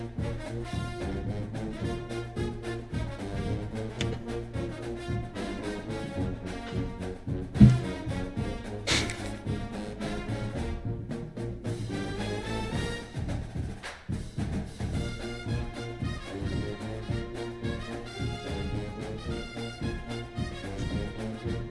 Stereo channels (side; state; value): both; identical; correlation 1.00